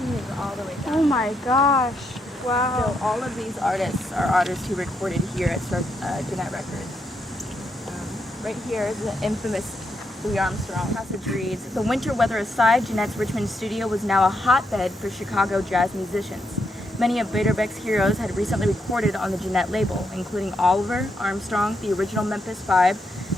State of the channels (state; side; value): normal; both; correlation 0.79